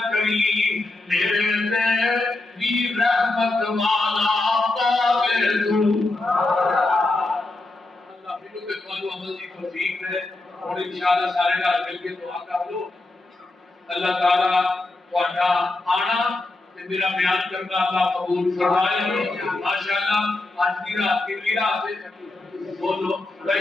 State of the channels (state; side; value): quieter; right; 3.0 dB